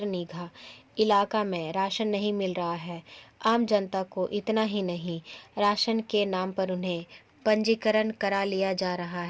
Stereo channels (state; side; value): identical; both; correlation 1.00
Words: नीघा इलाका में राशन नहीं मिल रहा है। आम जनता को इतना ही नहीं, राशन के नाम पर उन्हें पंजीकरण करा लिया जा रहा